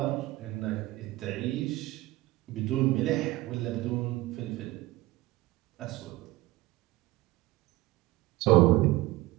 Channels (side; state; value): left; quieter; 18.8 dB